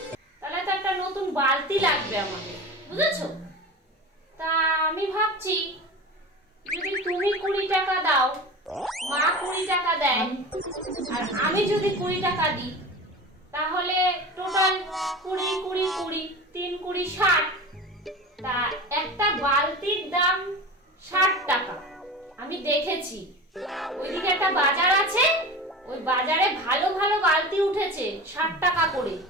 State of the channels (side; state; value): both; normal; correlation 0.31